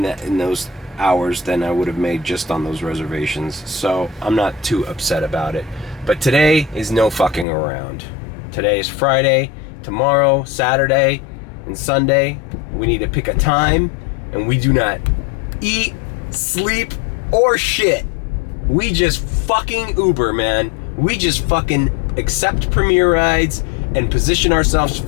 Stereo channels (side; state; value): right; drops out; at 7.5 s